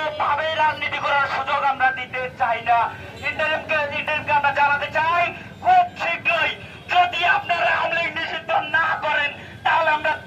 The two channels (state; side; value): identical; both; correlation 1.00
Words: রাজনীতি করার সুযোগ আমরা দিতে চাই না। ইন্টারিমকে আমরা জানাতে চাই, খুব শীঘ্রই যদি আপনারা আওয়ামী লীগ নিষিদ্ধ না করেন তাহলে আমরা